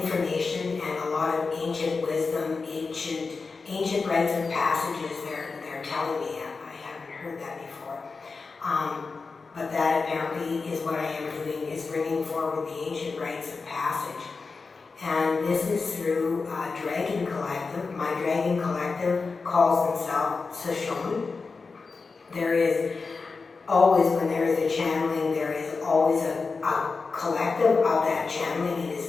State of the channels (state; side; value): quieter; right; 4.4 dB